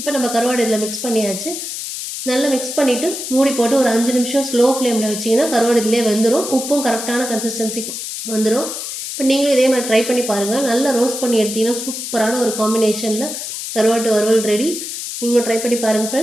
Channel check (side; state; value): left; noise; hiss, 6 dB below the sound